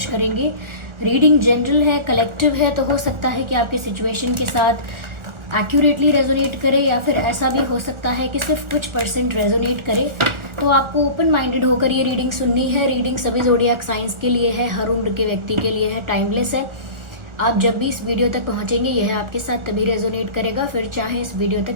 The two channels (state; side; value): late; left; 1.4 ms